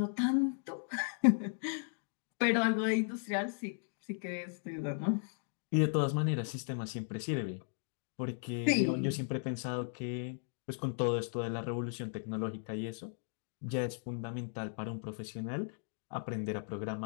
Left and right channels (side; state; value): right; silent; digital silence